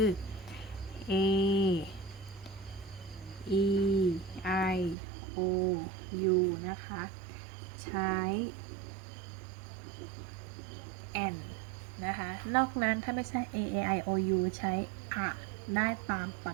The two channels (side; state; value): left; drops out; at 5.0 s